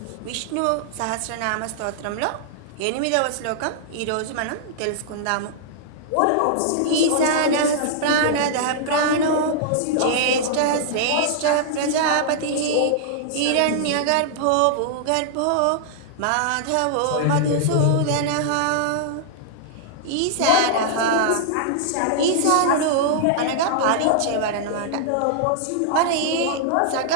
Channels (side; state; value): both; different; correlation -0.01